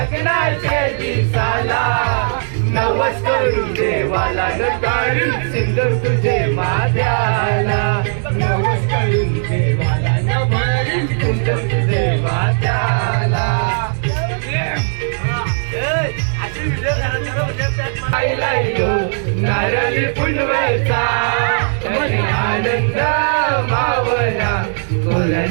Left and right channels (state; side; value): silent; left; digital silence